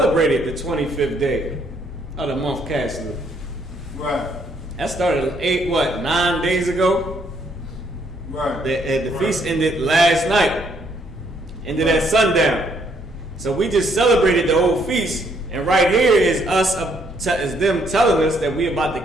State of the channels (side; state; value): both; normal; correlation 0.70